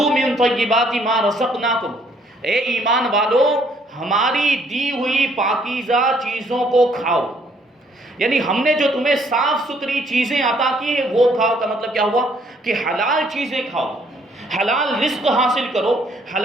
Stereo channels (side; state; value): both; normal; correlation 0.65